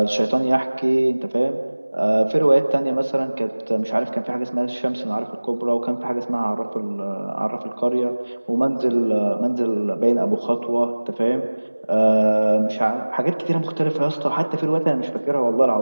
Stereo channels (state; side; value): inverted; both; correlation -1.00